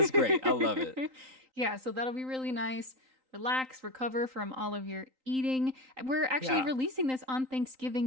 great. I love it. Yeah, so that'll be really nice. Relax, recover from all of your eating. We're actually releasing this on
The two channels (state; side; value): late; left; 3.9 ms